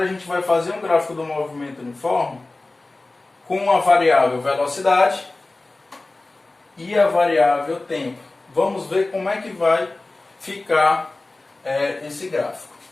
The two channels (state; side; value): quieter; right; 3.1 dB